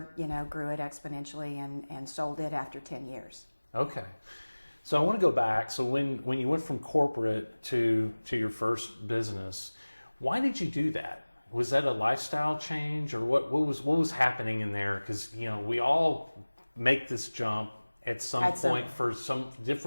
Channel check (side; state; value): both; inverted; correlation -1.00